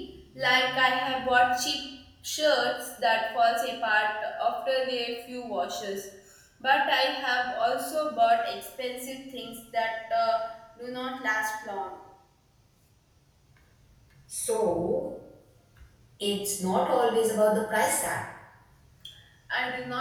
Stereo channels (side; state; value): both; identical; correlation 1.00